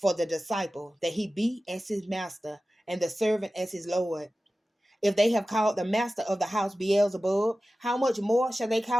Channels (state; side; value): normal; both; correlation 0.95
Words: the disciple that he be as his master, and the servant as his Lord. If they have called the master of the house Beelzebub, how much more shall they